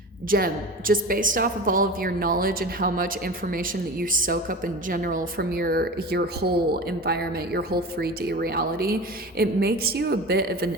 Gem, just based off of all of your knowledge and how much information that you soak up in general from your whole environment, your whole 3D reality, it makes you a bit of an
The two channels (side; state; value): both; normal; correlation 0.31